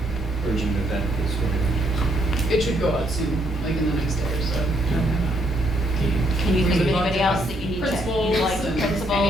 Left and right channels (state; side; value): normal; both; correlation 0.72